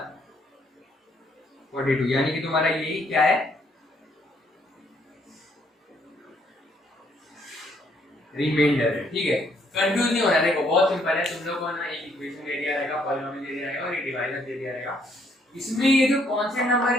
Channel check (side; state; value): both; normal; correlation 0.69